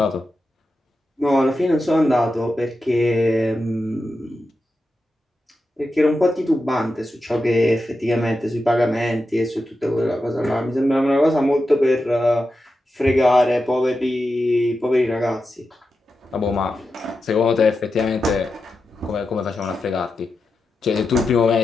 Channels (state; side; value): normal; both; correlation 0.90